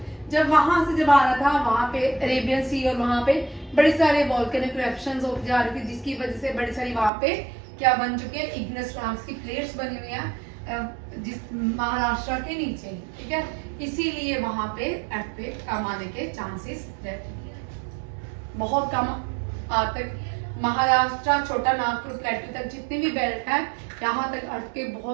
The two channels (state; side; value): drops out; left; at 7.1 s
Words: जब वहां से जब आ रहा था वहां पे अरेबियन सी और वहां पे बड़े सारे वॉल्केनिक इरप्शंस होते जा रहे थे, जिसकी वजह से बड़ी सारी वहां पे क्या बन चुके हैं? इग्नेस रॉक्स की प्लेट्स बनी हुई हैं जिस महाराष्ट्र के नीचे, ठीक है। इसीलिए वहां पे अर्थक्वेक कम आने के चांसेस रहते हैं, बहुत कम तक महाराष्ट्र, छोटा नागपुर, प्लेटू तक जितने भी बेल्ट है यहाँ तक अर्थ के